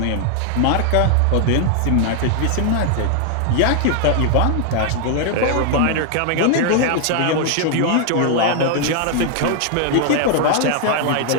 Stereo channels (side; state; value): both; different; correlation 0.00